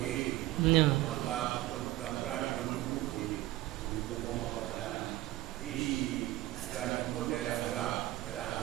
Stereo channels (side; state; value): left; quieter; 16.6 dB